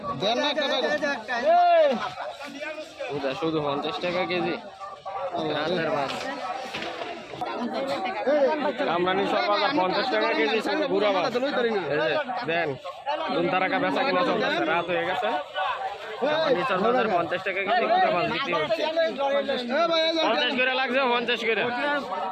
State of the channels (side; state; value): both; identical; correlation 1.00